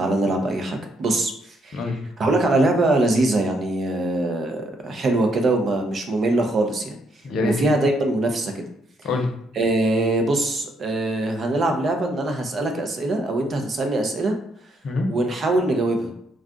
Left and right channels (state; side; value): normal; both; correlation 0.74